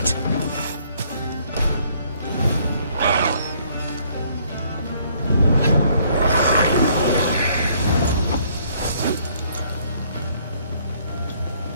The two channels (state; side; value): inverted; both; correlation -0.64